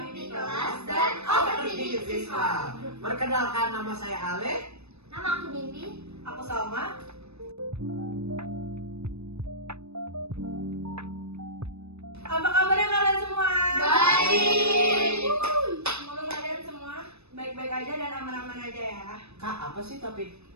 Mimpi Kelas dan Overthinking Siswa. Perkenalkan, nama saya Ale. Nama aku Mimpi. Aku Salma. Apa kabarnya kalian semua? Baik. Semoga kalian semua baik-baik aja dan aman-aman aja ya. Kak, apa sih topik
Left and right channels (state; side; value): late; left; 0.80 ms